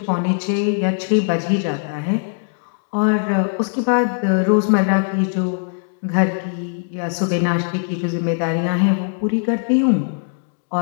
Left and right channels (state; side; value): silent; right; 66 dB below the other